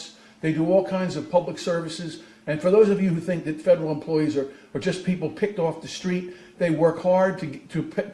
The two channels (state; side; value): identical; both; correlation 1.00